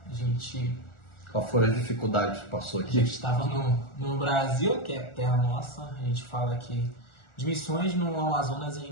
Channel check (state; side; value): late; right; 1.4 ms